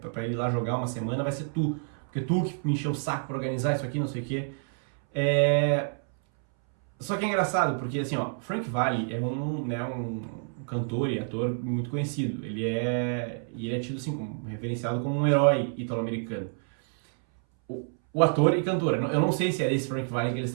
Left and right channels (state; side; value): silent; left; 59 dB below the other